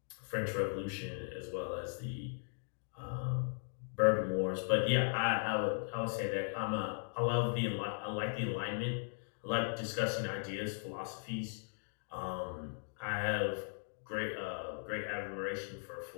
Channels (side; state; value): right; silent; digital silence